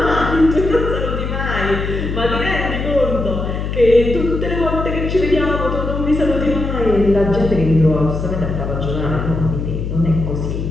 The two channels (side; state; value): left; noise; hum, 4 dB below the sound